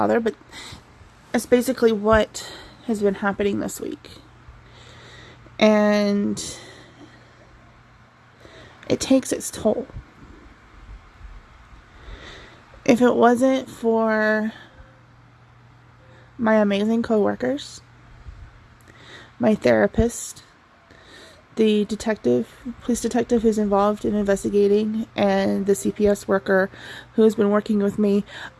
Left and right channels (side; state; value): both; identical; correlation 1.00